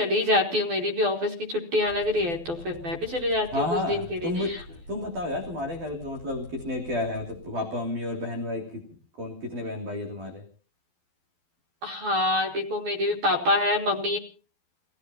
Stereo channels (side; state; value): left; late; 12 ms